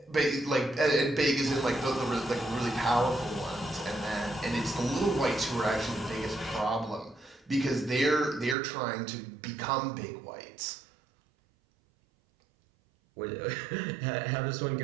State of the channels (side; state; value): left; drops out; at 8.6 s